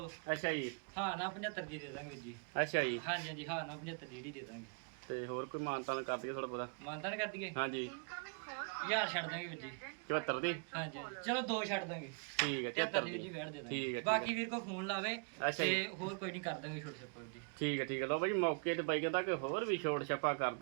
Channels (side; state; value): left; quieter; 39.8 dB